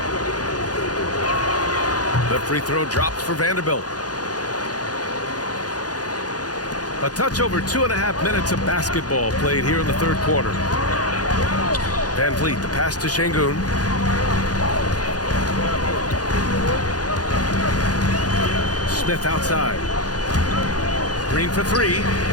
The free throw drops for Vanderbilt. A touch over 2.5 minutes of basketball played here in the third quarter. VanVleet, the pass to Şengün. Smith outside. Green for 3.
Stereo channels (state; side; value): late; right; 0.69 ms